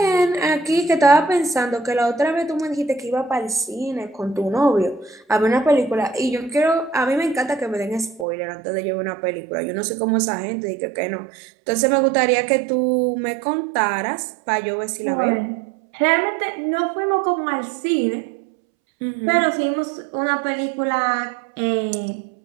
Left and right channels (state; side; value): drops out; left; at 8.2 s